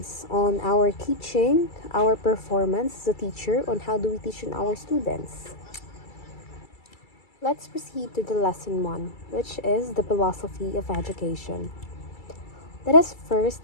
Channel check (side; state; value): right; late; 2.3 ms